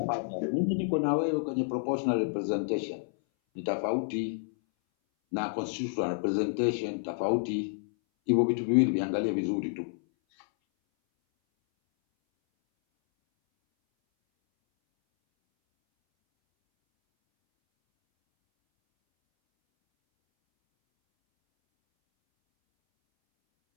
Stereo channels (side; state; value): right; silent; 58 dB below the other